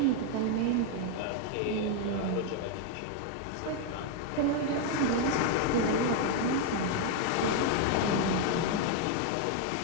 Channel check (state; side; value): different; both; correlation 0.01